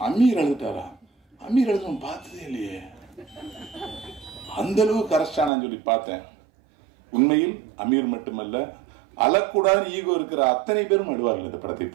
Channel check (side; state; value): left; drops out; at 5.5 s